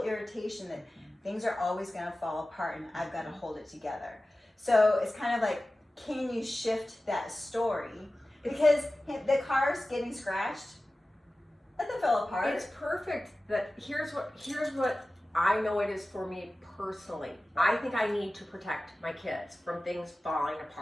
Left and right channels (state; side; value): normal; both; correlation 0.96